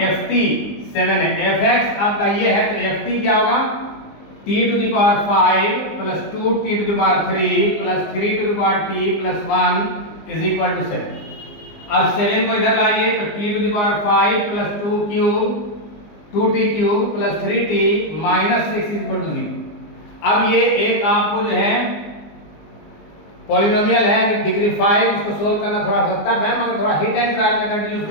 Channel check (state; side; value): late; right; 20 ms